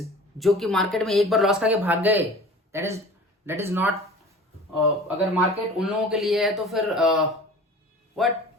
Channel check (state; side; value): normal; both; correlation 0.41